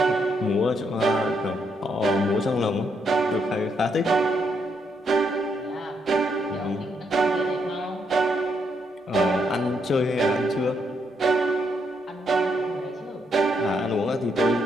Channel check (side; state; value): both; normal; correlation 0.77